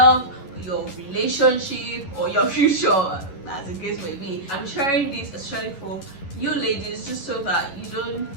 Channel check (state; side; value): late; right; 11 ms